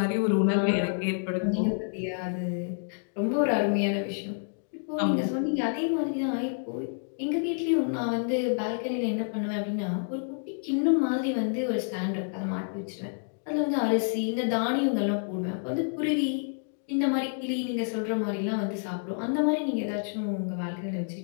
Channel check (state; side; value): silent; right; digital silence